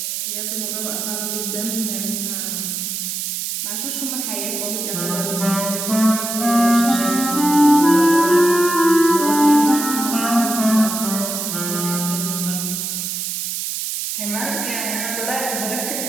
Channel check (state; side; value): noise; right; hiss, 3 dB below the sound